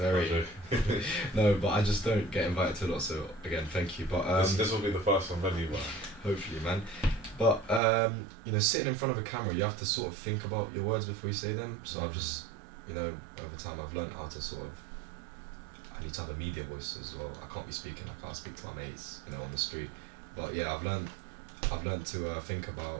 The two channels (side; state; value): left; drops out; at 7.8 s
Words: no, but I just don't get invited to a lot. So again, thank you. But this will be the first one anyway. Hopefully, man. But you know, sitting in front of a camera, you have to sort of think about your words before you say them. So I've just, you know, over time I've learned how to sort of. I need to have a media voice as well. I can't be speaking. I can't speak to my mates, you know, on the street. But yeah, I've learned to think